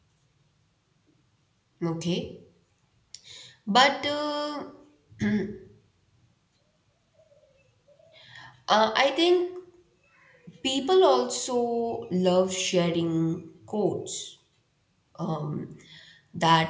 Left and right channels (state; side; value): identical; both; correlation 1.00